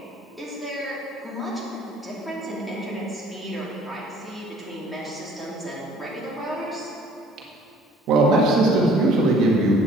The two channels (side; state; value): both; normal; correlation 0.54